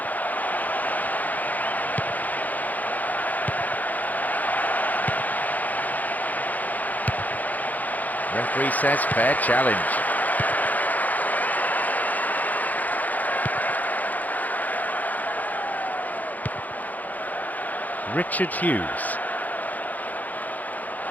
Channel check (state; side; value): late; right; 0.081 ms